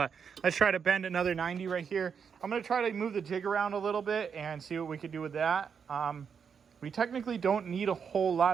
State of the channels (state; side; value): quieter; left; 6.7 dB